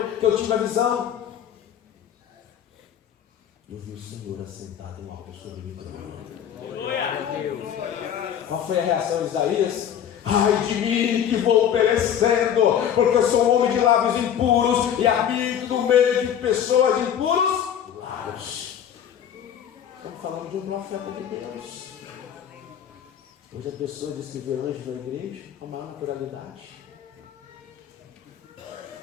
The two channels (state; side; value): quieter; right; 9.3 dB